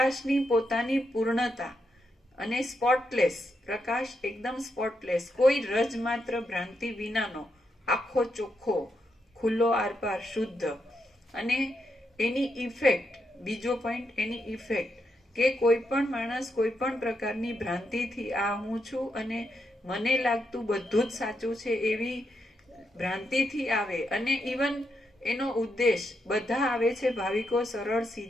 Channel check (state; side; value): normal; both; correlation 0.82